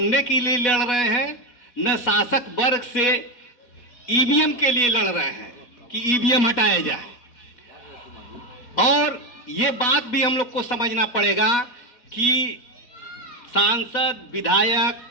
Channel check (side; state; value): right; late; 4.1 ms